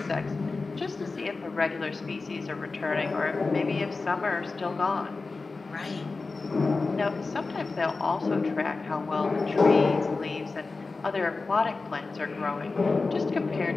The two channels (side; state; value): right; quieter; 3.9 dB